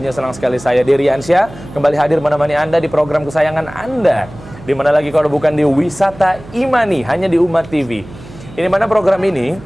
senang sekali saya Dery Ansyah kembali hadir menemani Anda di program kesayangan Anda. Di mana lagi kalau bukan di Wisata Imani, hanya di Umat TV. Ini mana program ini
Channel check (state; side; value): noise; right; hum, 18 dB below the sound